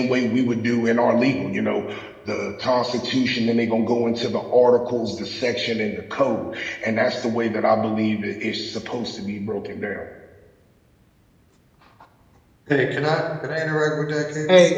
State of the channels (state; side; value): identical; both; correlation 1.00